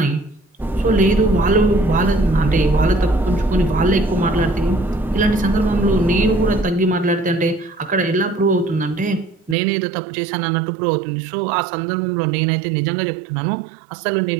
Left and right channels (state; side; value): drops out; left; at 9.6 s